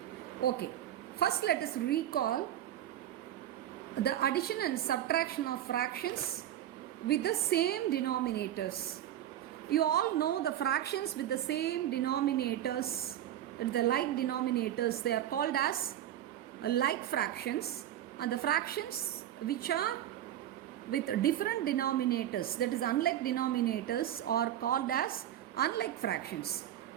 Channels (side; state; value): left; quieter; 11.8 dB